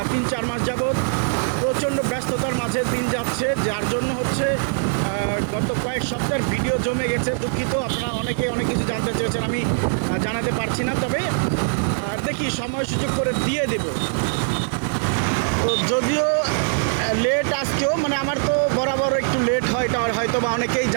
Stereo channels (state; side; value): silent; left; digital silence